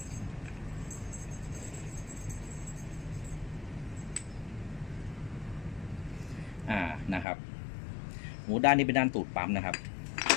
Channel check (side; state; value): right; drops out; at 7.2 s